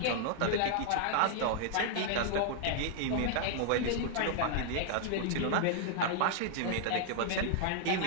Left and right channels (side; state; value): both; different; correlation 0.00